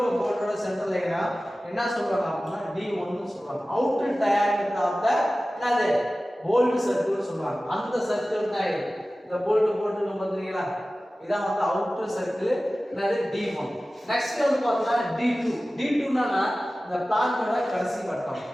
போல்டோட சென்டர் லைனும் என்ன சொல்றாங்க அப்படின்னா D1 னு சொல்றாங்க. அவுட்டர் டயாமீட்டர் ஆஃப் தி என்னது போல்ட் சர்க்கிள் சொல்றாங்க. அந்த சர்க்கிள் தான் இது. இந்த போல்ட் போட்டு பாத்தீங்களா? இதான் வந்து அவுட்டர் சர்க்கிள் என்னது D1. நெக்ஸ்ட் வந்து பார்த்தா D2. D2 னா இந்த பிளான்ட்டோட கடைசி வட்டம்.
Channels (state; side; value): normal; both; correlation 0.96